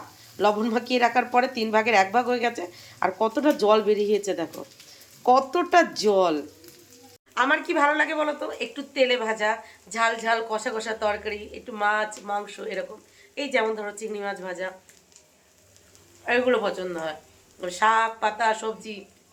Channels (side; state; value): both; identical; correlation 1.00